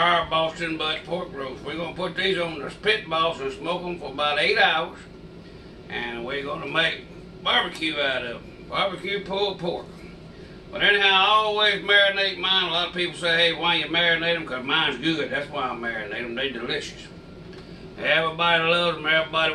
Boston butt pork roast. We're going to put these on the pit boss and smoke them for about 8 hours. And we're going to make barbecue out of them. Barbecue pulled pork. But anyhow, I always marinate mine. A lot of people say, hey, why you marinate them? Because mine's good. That's why I marinate them. They're delicious. Everybody loves them. Everybody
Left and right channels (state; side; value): identical; both; correlation 1.00